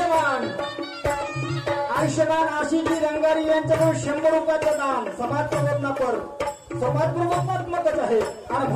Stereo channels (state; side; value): identical; both; correlation 1.00